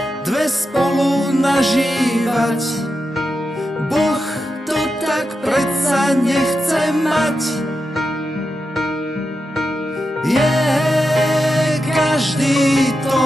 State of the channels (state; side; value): normal; both; correlation 0.88